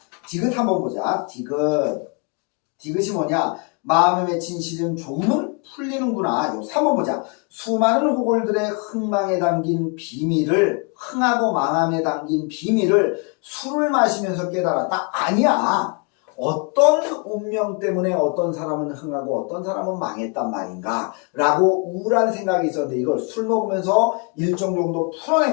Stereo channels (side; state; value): right; quieter; 35.2 dB